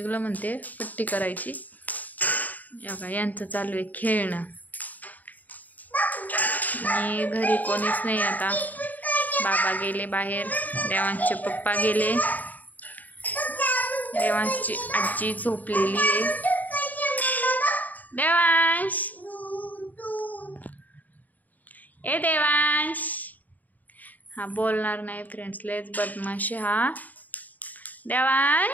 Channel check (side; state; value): right; late; 0.081 ms